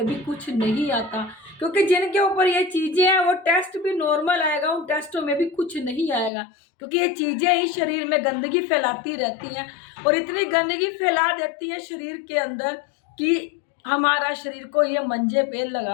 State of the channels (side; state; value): right; drops out; at 6.3 s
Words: भी कुछ नहीं आता, क्योंकि जिनके ऊपर ये चीजें हैं वो टेस्ट भी नॉर्मल आएगा, उन टेस्टों में भी कुछ नहीं आएगा, क्योंकि ये चीजें ही शरीर में गंदगी फैलाती रहती हैं और इतनी गंदगी फैला देती है शरीर के अंदर कि हमारा शरीर को ये मंजे पे